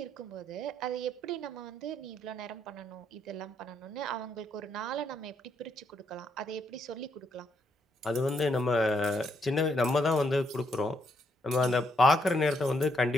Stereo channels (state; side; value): normal; both; correlation 0.75